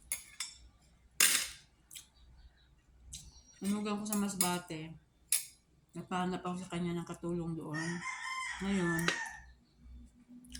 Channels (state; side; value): identical; both; correlation 1.00